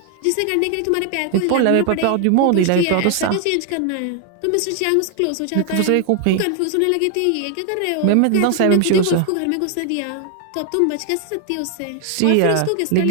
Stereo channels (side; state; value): both; different; correlation 0.00